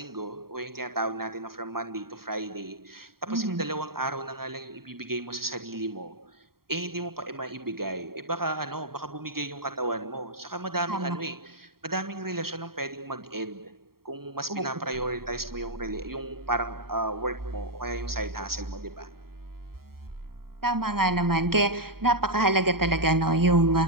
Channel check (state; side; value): late; left; 0.93 ms